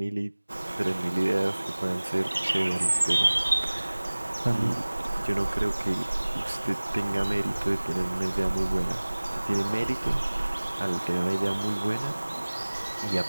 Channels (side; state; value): both; inverted; correlation -1.00